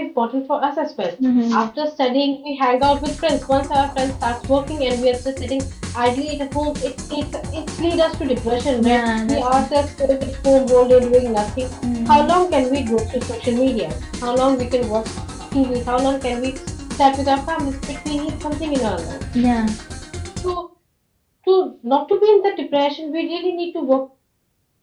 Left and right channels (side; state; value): both; identical; correlation 1.00